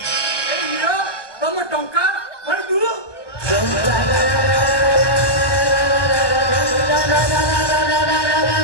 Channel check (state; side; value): late; right; 1.1 ms